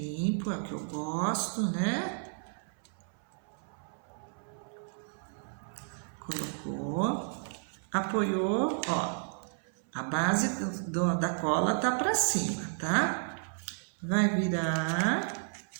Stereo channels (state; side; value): silent; left; 56 dB below the other